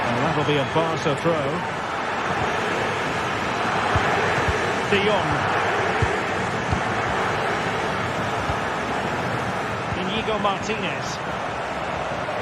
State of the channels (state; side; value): identical; both; correlation 1.00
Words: And that'll be a Barca throw. De Jong. Íñigo Martínez.